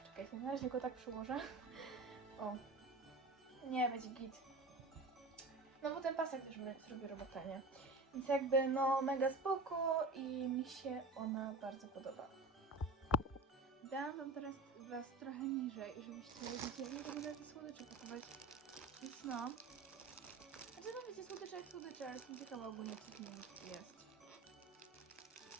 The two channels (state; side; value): quieter; left; 3.1 dB